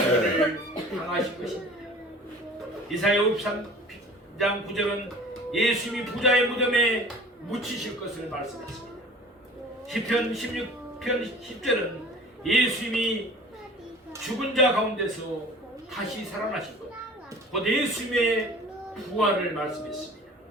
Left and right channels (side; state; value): both; normal; correlation 0.44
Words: 일을 당하신 것입니다. 이사야 53장 9절은 예수님이 부자의 무덤에 묻히실 것을 말씀했습니다. 시편 16편 10절은 예수님이 죽은 자 가운데서 다시 살아나신 것, 곧 예수님의 부활을 말씀했습니다.